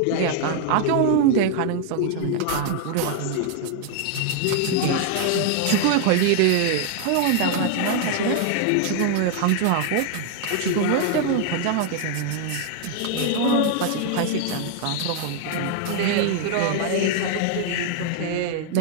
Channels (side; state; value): both; different; correlation 0.00